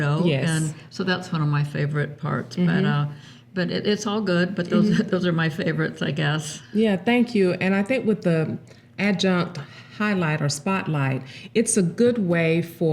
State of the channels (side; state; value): both; identical; correlation 1.00